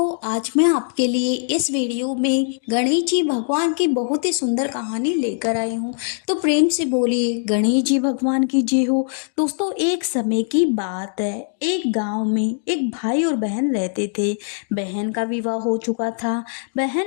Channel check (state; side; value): silent; right; digital silence